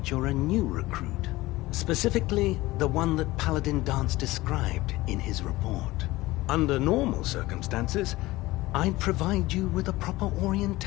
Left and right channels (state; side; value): quieter; right; 19.0 dB